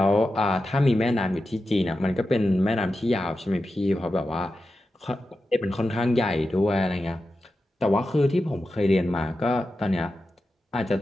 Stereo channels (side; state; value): both; normal; correlation 0.91